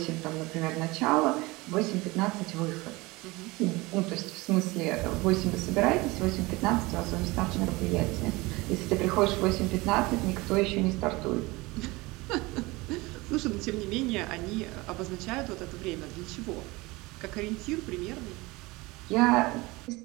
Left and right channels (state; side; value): quieter; left; 22.6 dB